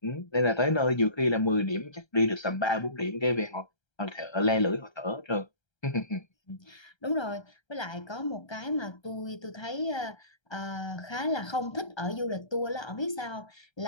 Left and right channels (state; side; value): late; right; 1.3 ms